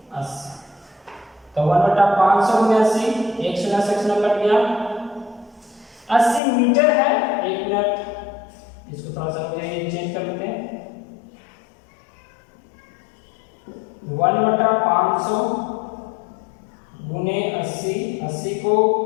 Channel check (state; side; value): drops out; right; at 6.4 s